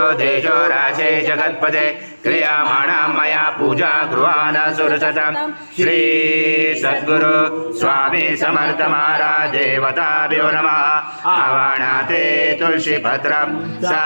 देशो राशे जगत्पदे क्रियमाणां मया पूजा गृहाण सुरसतं श्री सद्गुरु स्वामी समर्थ महाराज देवताभ्यो नमः। आवाहनाते तुलसीपत्रं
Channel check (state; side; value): inverted; both; correlation -1.00